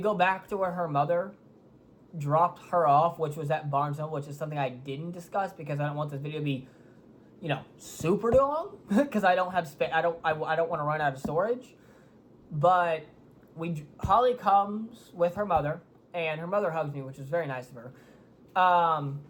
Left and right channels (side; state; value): both; identical; correlation 1.00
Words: back to where her mother dropped her off, which was at Barnes & Noble, which is something I didn't discuss because I don't want this video to be, you know, super long because I don't have space. I don't want to run out of storage. But Holly comes with her mother, and her mother hugs me, which was very nice of her.